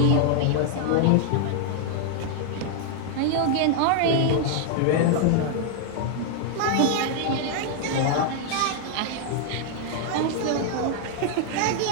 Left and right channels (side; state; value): both; different; correlation 0.00